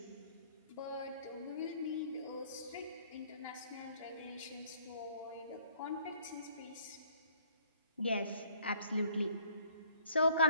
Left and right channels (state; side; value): inverted; both; correlation -0.60